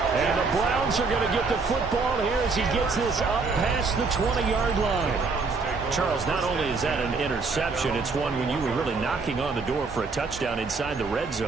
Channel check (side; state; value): left; quieter; 4.3 dB